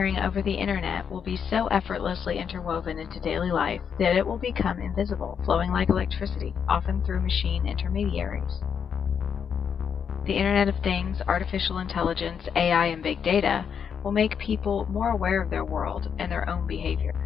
over the Internet will be so effortlessly interwoven into daily life that it will become invisible, flowing like electricity, often through machine intermediaries. The Internet of Things, artificial intelligence, AI, and big data will make people more aware of their world and their own behavior.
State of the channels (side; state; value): right; quieter; 7.2 dB